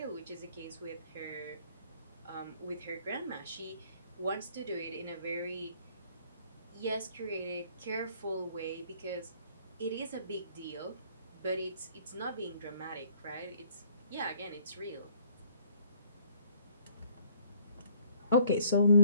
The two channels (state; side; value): inverted; both; correlation -0.61